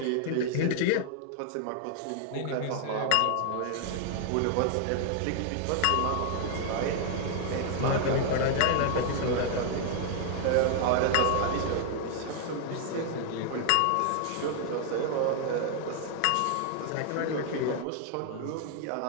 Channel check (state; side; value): different; both; correlation 0.00